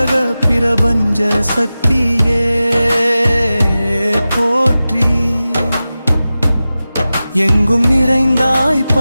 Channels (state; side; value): inverted; both; correlation -0.95